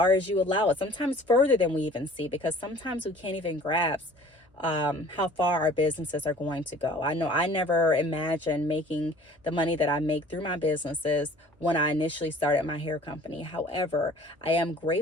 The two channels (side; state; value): both; normal; correlation 0.49